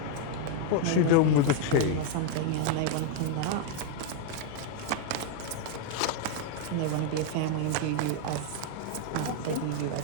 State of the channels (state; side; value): different; both; correlation 0.00